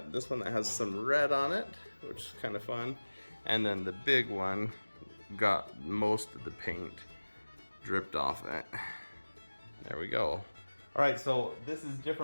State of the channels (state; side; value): inverted; both; correlation -1.00